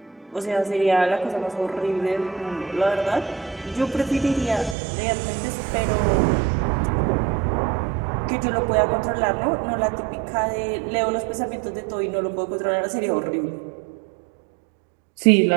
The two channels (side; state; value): left; drops out; at 4.8 s